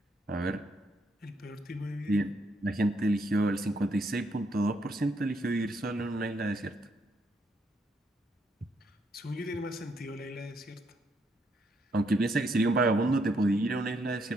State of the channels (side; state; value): both; normal; correlation 0.74